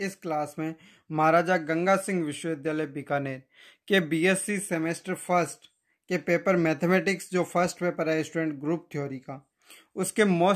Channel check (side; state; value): both; identical; correlation 1.00